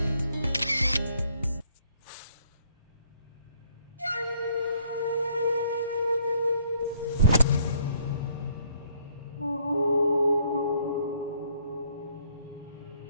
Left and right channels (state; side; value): inverted; both; correlation -0.65